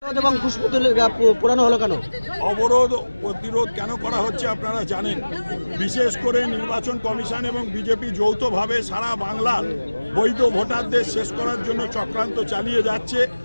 অবরোধ প্রতিরোধ কেন করা হচ্ছে আপনারা জানেন। বিশেষ করে নির্বাচন কমিশন এবং বিজেপি যৌথভাবে সারা বাংলার বৈধ ভোটারদের শেষ করার জন্য চক্রান্ত চালিয়ে যাচ্ছে।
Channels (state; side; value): inverted; both; correlation -1.00